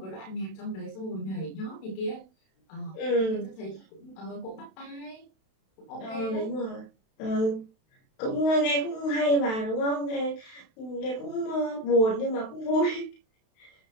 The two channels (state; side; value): late; right; 32 ms